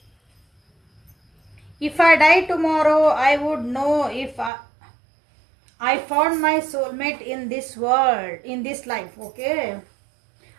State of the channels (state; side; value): drops out; left; at 4.5 s